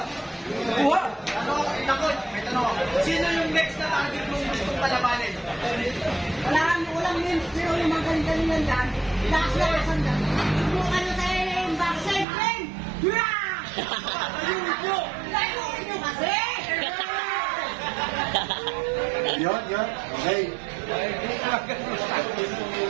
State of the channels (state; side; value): drops out; left; at 12.2 s